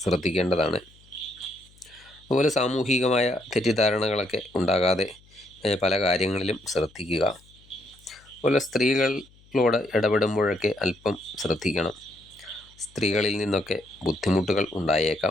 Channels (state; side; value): noise; left; hum, 28 dB below the sound